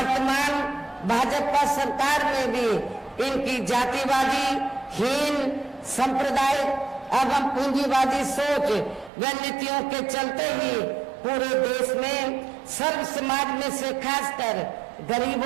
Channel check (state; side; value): drops out; left; at 9.1 s